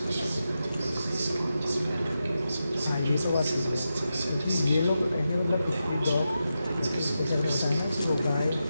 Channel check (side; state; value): both; inverted; correlation -0.89